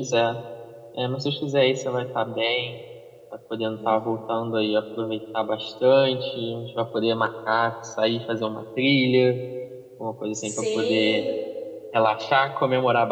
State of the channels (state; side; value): identical; both; correlation 1.00